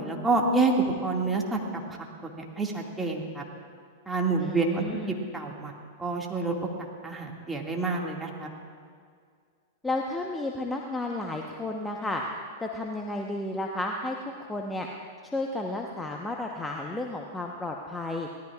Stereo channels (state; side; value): normal; both; correlation 0.32